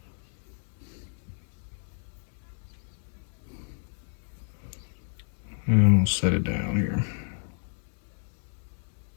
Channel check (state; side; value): silent; right; digital silence